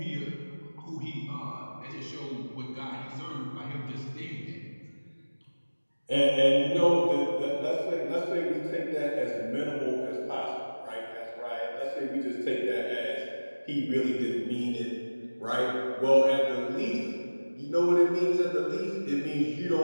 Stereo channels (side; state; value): both; inverted; correlation -1.00